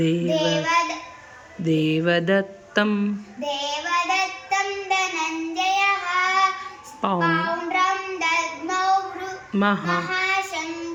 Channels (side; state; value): both; identical; correlation 1.00